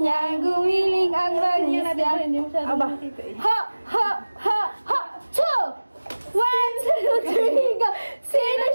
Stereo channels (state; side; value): inverted; both; correlation -1.00